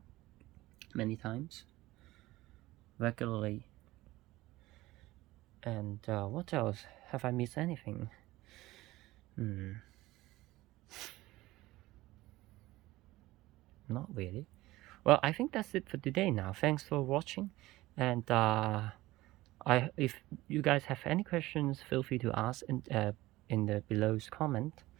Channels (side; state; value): left; quieter; 18.1 dB